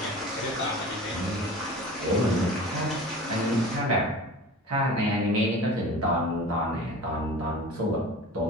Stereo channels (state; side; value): normal; both; correlation 0.38